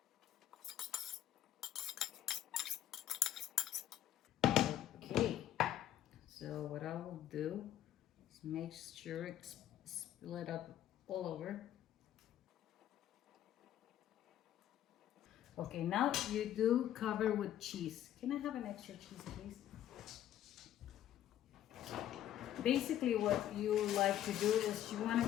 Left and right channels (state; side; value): quieter; right; 11.8 dB